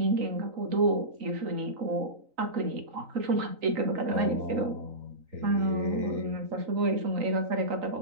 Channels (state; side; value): late; left; 3.9 ms